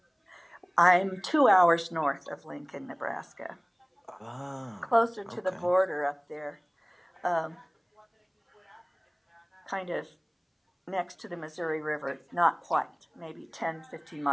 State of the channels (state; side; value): identical; both; correlation 1.00